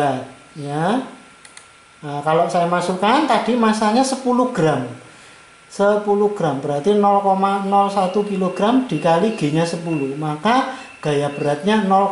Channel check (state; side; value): identical; both; correlation 1.00